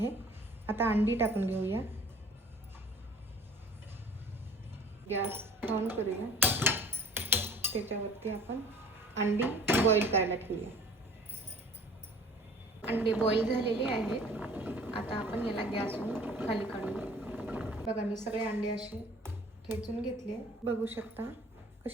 आता अंडी टाकून घेऊया। गॅस ऑन करूया। त्याच्यावरती आपण अंडी बॉईल करायला ठेवूया। अंडे बॉईल झालेले आहेत। आता आपण याला गॅसवरून खाली काढूया। बघा, मी सगळे अंडे असे ठेचून घेतले। बघू शकता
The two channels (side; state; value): both; normal; correlation 0.49